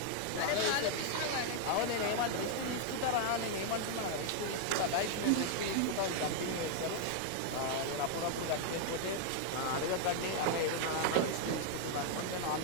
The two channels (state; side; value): different; both; correlation 0.00